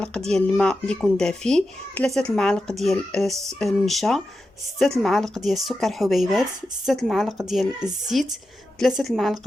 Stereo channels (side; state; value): both; normal; correlation 0.90